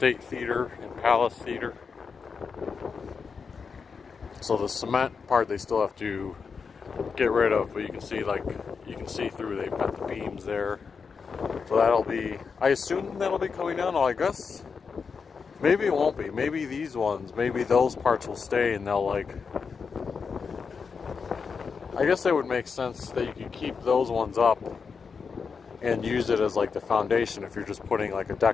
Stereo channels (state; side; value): quieter; right; 5.5 dB